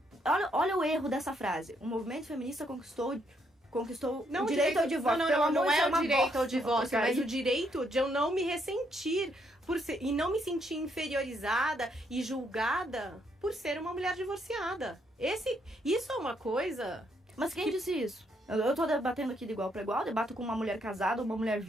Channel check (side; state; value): both; normal; correlation 0.73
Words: Olha o erro dessa frase. O movimento feminista conquistou o direito ao divórcio. Não é o direito ao bosta. divórcio, mas o direito de eu não me ressentir e não me sentir inferiorizada e julgada por ser uma mulher divorciada. Isso é uma coisa... Mas quem disse isso? Eu tô debatendo aqui de igual para igual, debato com uma mulher casada, uma mulher